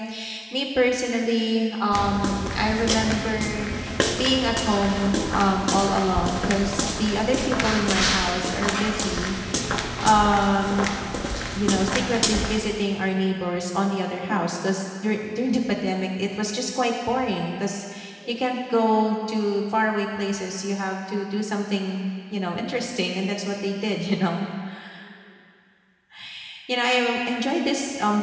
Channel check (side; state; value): both; identical; correlation 1.00